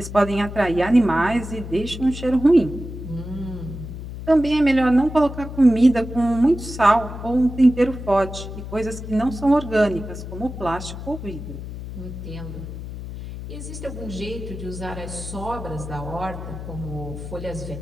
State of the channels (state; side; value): noise; left; hum, 9 dB below the sound